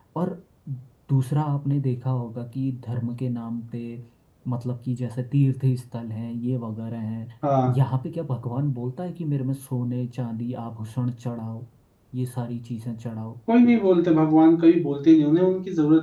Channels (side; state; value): both; identical; correlation 1.00